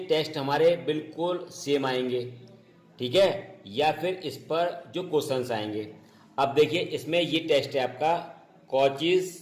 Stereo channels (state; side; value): identical; both; correlation 1.00